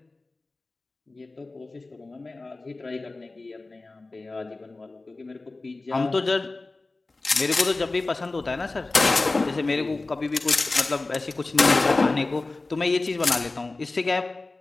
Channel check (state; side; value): quieter; right; 3.3 dB